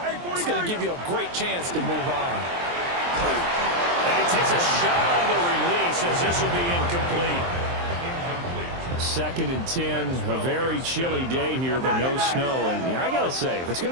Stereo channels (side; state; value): left; late; 23 ms